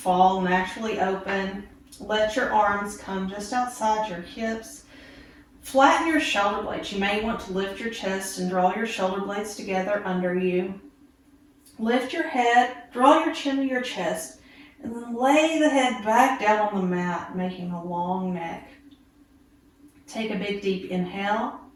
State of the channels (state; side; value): identical; both; correlation 1.00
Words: naturally open. Let your arms come just outside your hips. Flatten your shoulder blades. You may want to lift your chest and draw your shoulder blades together under you. Lift your head, draw your chin to your chest, and then lay the head back down on the mat, making a long neck. Take a big deep inhale,